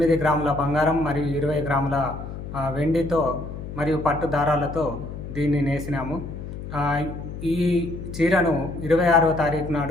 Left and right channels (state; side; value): noise; left; hum, 9 dB below the sound